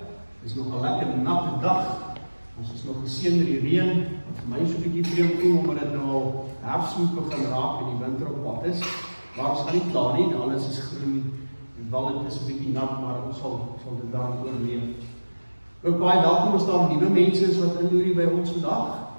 is nog 'n lekker natte dag. Ons is nog geseën met die reën. Vir my is so 'n bietjie vreemd voel omdat dit nou al herfs moet begin raak en die winter op pad is. Maar ons gaan nie klaar nie, alles is groen en wel dit is 'n bietjie nat, maar ons sal dit dan oorleef. Ook baie welkom as daar nuwe mense is wat inloer by ons vandag.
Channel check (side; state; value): both; inverted; correlation -1.00